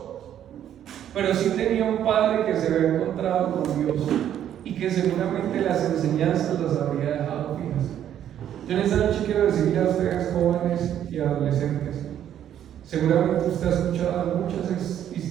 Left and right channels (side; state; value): left; quieter; 10.4 dB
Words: pero sí tenía un padre que se había encontrado con Dios y que seguramente las enseñanzas las habría dejado fijas. Yo en esta noche quiero decirle a ustedes, jóvenes y adolescentes, seguramente usted ha escuchado muchas